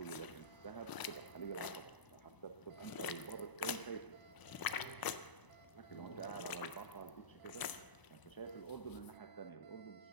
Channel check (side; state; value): right; late; 1.0 ms